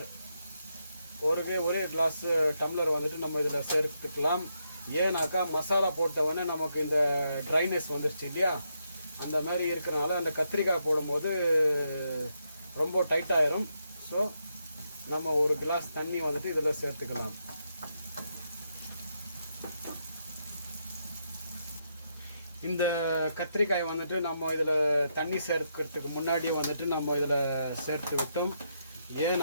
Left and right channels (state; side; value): inverted; both; correlation -0.80